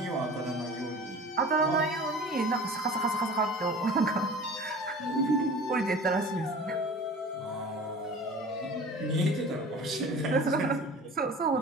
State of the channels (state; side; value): normal; both; correlation 0.40